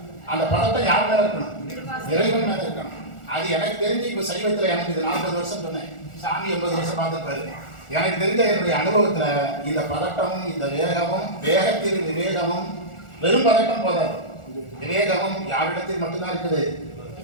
அந்த பதட்டம் யார் மேல இருக்கணும், இறைவன் மேல இருக்கணும். அது எனக்கு தெரிஞ்சு இப்ப சைவத்துல எனக்கு இது 40 வருஷம் சொன்னேன், சாமி 80 வருஷம் பார்த்துருப்பாரு. எனக்கு தெரிஞ்ச என்னுடைய அனுபவத்துல இந்த பதட்டமும் இந்த வேகமும், வேகத்தில் விவேகமும், வெறும் பதட்டம் போதாது, விவேகமும் யாரிடத்தில் மட்டும்தான் இருக்குது,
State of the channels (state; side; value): late; right; 1.4 ms